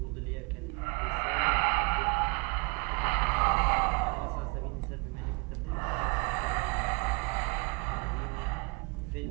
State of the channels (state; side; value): quieter; left; 30.2 dB